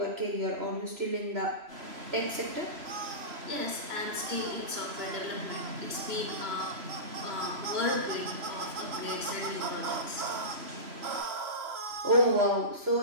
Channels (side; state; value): left; late; 3.0 ms